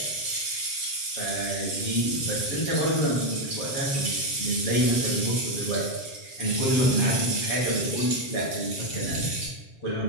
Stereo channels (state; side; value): late; right; 7.6 ms